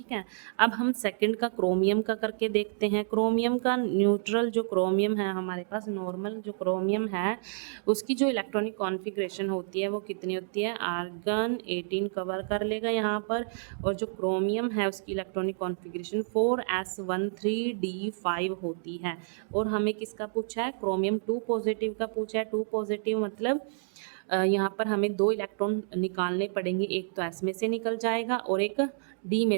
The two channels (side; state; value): left; silent; digital silence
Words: है। अब हम सेकंड का क्रोमियम का करके देखते हैं। क्रोमियम का न्यूट्रल जो क्रोमियम है हमारे पास, नॉर्मल जो क्रोमियम है उसकी जो इलेक्ट्रॉनिक कॉन्फ़िगरेशन होती है वो कितनी होती है, आर्गन 18 कवर कर लेगा यहाँ पर, और जो क्रोमियम है उसकी इलेक्ट्रॉनिक कॉन्फ़िगरेशन 4s13d5 होती है। और हमें किसका पूछा है, क्रोमियम 2 पॉजिटिव का पूछा है। 2 पॉजिटिव मतलब यहाँ पर हमें 2 इलेक्ट्रॉन निकालने पड़ेंगे, एक तो S में से निकल जाएगा और एक D में